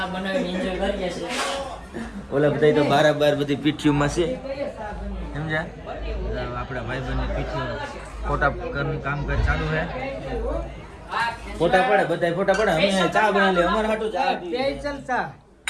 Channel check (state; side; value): identical; both; correlation 1.00